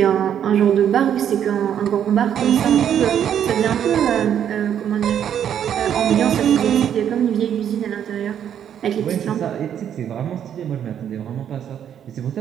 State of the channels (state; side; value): quieter; left; 9.4 dB